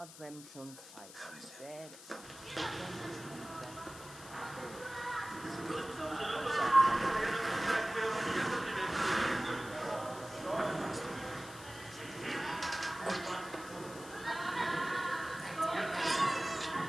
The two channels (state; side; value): noise; left; hiss, 16 dB below the sound